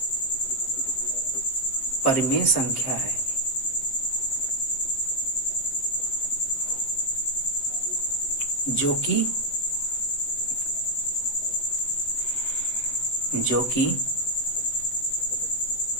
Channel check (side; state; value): right; late; 7.6 ms